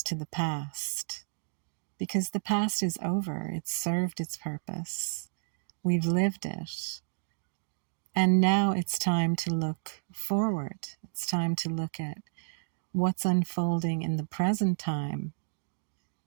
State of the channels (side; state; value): left; silent; digital silence